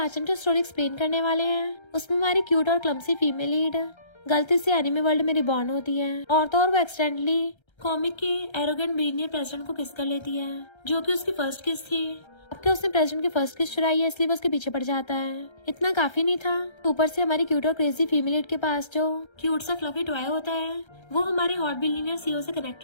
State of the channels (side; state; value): right; late; 1.3 ms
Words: हम जो स्टोरी एक्सप्लेन करने वाले हैं उसमें हमारी क्यूट और क्लमसी फीमेल लीड गलती से एनिमे वर्ल्ड में रिबॉर्न होती है और तो और वो एक्सीडेंटली कॉमिक के एरोगेंट बिलियनियर प्रेसिडेंट को किस कर लेती है, जो कि उसकी फर्स्ट किस थी। अब क्या उसने प्रेसिडेंट की फर्स्ट किस चुराई है, इसलिए वो उसके पीछे पड़ जाता है। इतना काफी नहीं था, ऊपर से हमारी क्यूट और क्रेजी फीमेल लीड के पास जो क्यूट सा फ्लफी टॉय होता है वो हमारे हॉट बिलियनियर सीईओ से